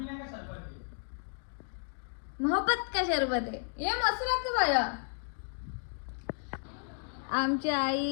मोहब्बत का शरबत आहे हे मस्त लागतं बाया. आमची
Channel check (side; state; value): right; silent; 56 dB below the other